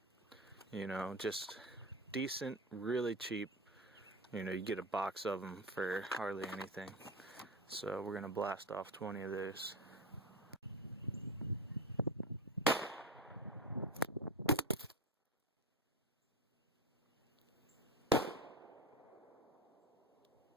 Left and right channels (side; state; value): both; normal; correlation 0.24